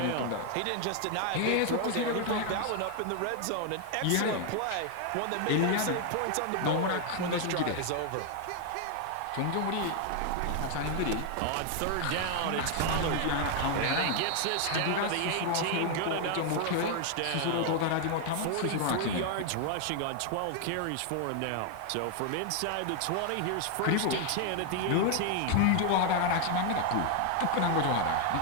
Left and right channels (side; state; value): both; different; correlation 0.00